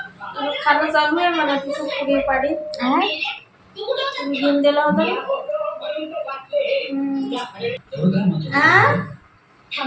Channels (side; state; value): both; identical; correlation 1.00